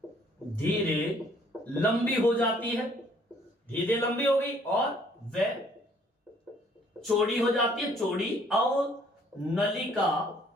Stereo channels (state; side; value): normal; both; correlation 0.61